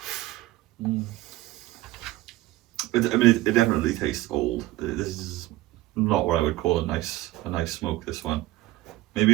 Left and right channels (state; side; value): quieter; left; 17.1 dB